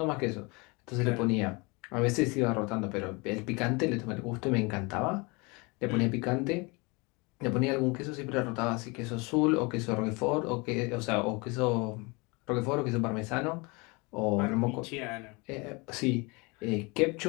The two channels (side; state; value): right; quieter; 27.7 dB